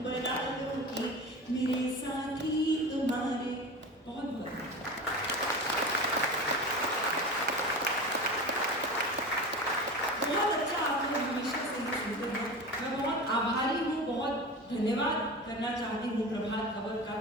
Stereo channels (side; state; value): both; normal; correlation 0.30